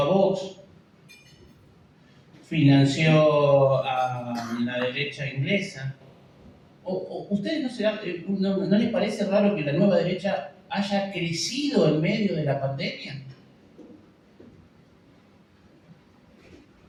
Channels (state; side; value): identical; both; correlation 1.00